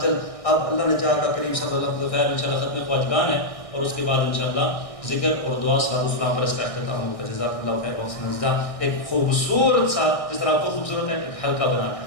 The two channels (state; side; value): late; right; 1.6 ms